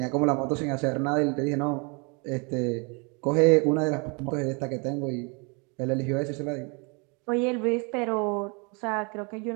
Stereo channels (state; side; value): quieter; left; 32.3 dB